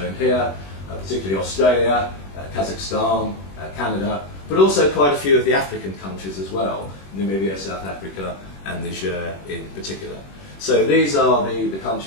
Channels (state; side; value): late; right; 21 ms